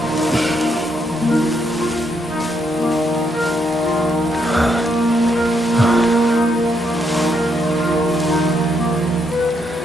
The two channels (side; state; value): both; normal; correlation 0.76